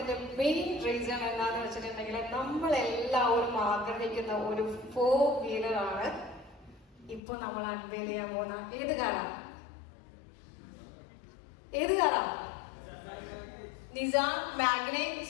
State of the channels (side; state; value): right; drops out; at 7.2 s